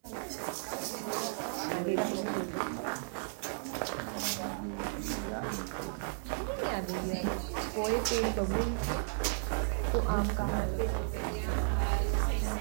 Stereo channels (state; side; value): silent; left; digital silence